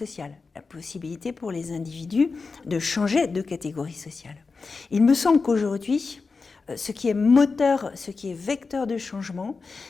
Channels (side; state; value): right; quieter; 4.4 dB